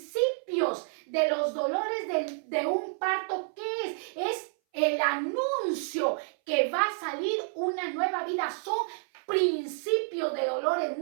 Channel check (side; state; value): left; silent; 58 dB below the other